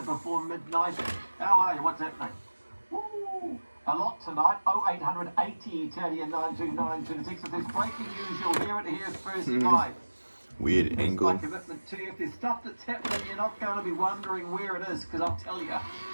before midnight. How are you? What's happening? Woo! A lot tonight. 0800 80 Italian 9292. The text, if there's breaking news, you'll hear it here first live. Weird That's angle. my commitment to you. If there's stuff that's happening, you're not going to be wondering where it is, because I'll tell you.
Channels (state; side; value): inverted; both; correlation -1.00